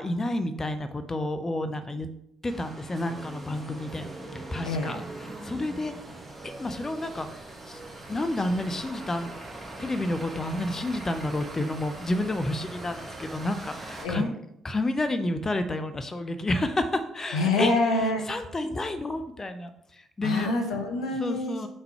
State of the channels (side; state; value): both; normal; correlation 0.73